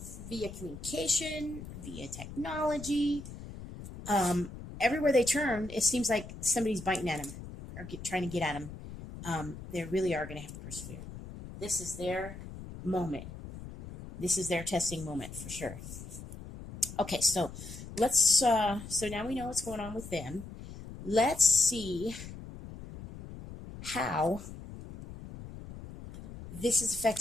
via communication, via technology. Everywhere they turn, it seems like somebody's biting at them or trying to get at them. They really are going to have to persevere. This is their moment. This is their testing moment for sure. Okay, so let's, so now we know what's going on with them. Let's see how this is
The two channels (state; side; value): noise; left; rumble, 12 dB below the sound